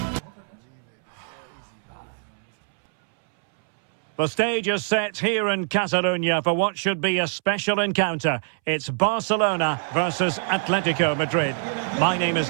The stage is set here in Catalonia for what should be a special encounter. It's Barcelona versus Atletico Madrid. My name is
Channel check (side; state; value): left; silent; 63 dB below the other